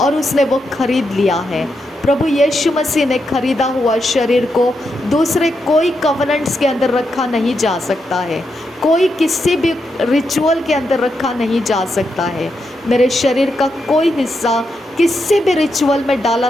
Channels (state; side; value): normal; both; correlation 0.84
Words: उसने वो खरीद लिया है। प्रभु यीशु मसीह ने खरीदा हुआ शरीर को दूसरे कोई कवनेंट्स के अंदर रखा नहीं जा सकता है। कोई किसी भी रिचुअल के अंदर रखा नहीं जा सकता है। मेरे शरीर का कोई हिस्सा किसी भी रिचुअल में डाला